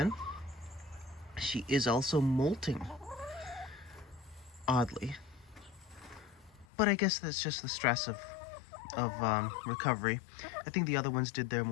She is also molting, oddly. But I guess that's just the stress of recovery. I think the other ones did their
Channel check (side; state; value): right; drops out; at 6.7 s